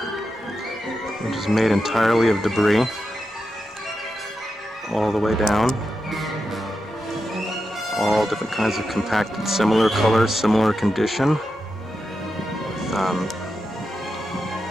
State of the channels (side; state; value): both; normal; correlation 0.88